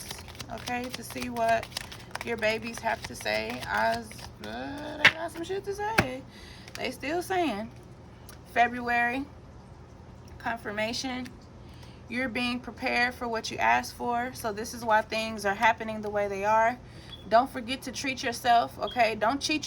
okay, to see what your babies have to say. They got some shit to say. They still saying. February. Confirmation. You're being prepared for what you asked for. So this is why things are happening the way they are. Don't forget to treat yourself, okay? Don't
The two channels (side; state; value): both; identical; correlation 1.00